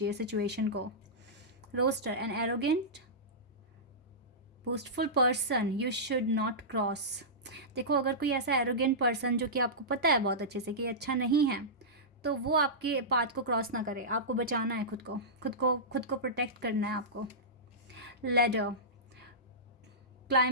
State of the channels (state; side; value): normal; both; correlation -0.16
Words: सिचुएशन को। Rooster, an arrogant boastful person you should not cross. देखो, अगर कोई ऐसा एरोगेंट पर्सन जो कि आपको पता है बहुत अच्छे से कि अच्छा नहीं है, तो वो आपके पाथ को क्रॉस ना करे। आपको बचाना है खुद को प्रोटेक्ट करना है आपको। लेडर,